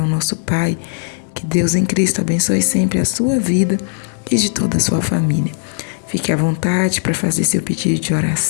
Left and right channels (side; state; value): right; silent; digital silence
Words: nosso Pai. Que Deus em Cristo abençoe sempre a sua vida e de toda a sua família. Fique à vontade para fazer seu pedido de